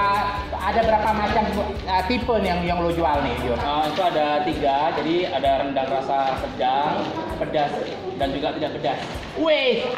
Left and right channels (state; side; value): identical; both; correlation 1.00